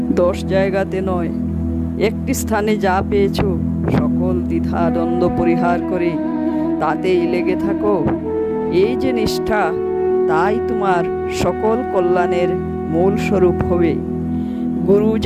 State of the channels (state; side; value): identical; both; correlation 1.00